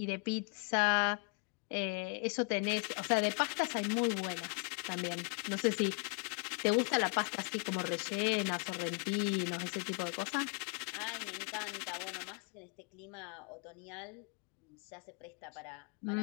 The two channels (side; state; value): right; quieter; 36.1 dB